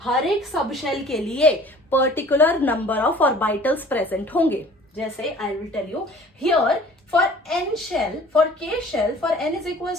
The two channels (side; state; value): both; normal; correlation 0.49